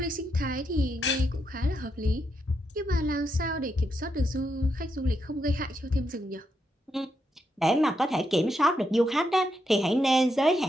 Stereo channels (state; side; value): normal; both; correlation 0.81